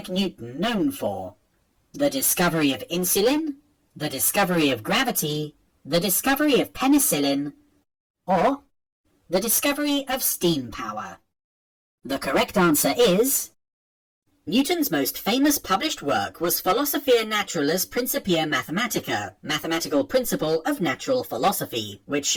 Newton known for? The discovery of insulin, the discovery of gravity, the discovery of penicillin, or the discovery of steam power? The correct answer is... Newton's most famous published work was Philosophiae Naturalis Principia Mathematica, Mathematical Principle of Natural Philosophy, which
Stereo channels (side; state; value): both; identical; correlation 1.00